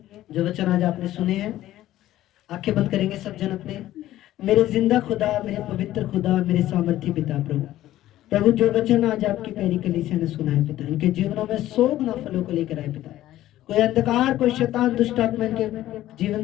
जो वचन आज आपने सुने हैं। आंखें बंद करेंगे सब जन अपने। मेरे जिंदा खुदा, मेरे पवित्र खुदा, मेरे सामर्थी पिता प्रभु, प्रभु जो वचन आज आपकी प्यारी कलीसिया ने सुना है पिता, इनके जीवनों में 100 गुना फलों को लेकर आए पिता। कोई अंधकार, कोई शैतान, दुष्ट आत्मा इनके जीवन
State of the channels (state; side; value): quieter; right; 14.1 dB